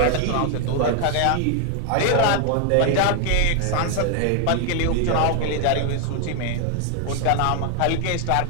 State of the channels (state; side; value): different; both; correlation 0.00